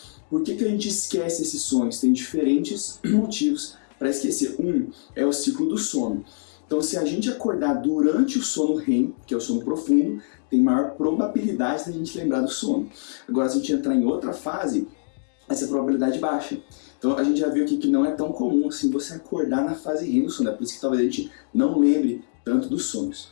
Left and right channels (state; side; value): silent; right; digital silence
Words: Por que a gente esquece esses sonhos? Tem diferentes motivos para esquecer. Um é o ciclo do sono. Então, se a gente acordar durante o sono REM, que é o sono profundo, tem maior probabilidade da gente lembrar do sono. Agora, se a gente entrar em outra fase, essa probabilidade baixa. Então, a gente já viu aqui que não é tão comum assim você acordar na fase REM do sono. É por isso que talvez a gente não lembre tanto dos